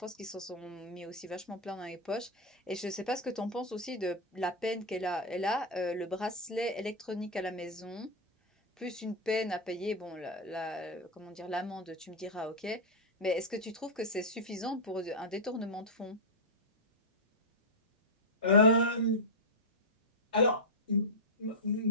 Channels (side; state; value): both; normal; correlation -0.02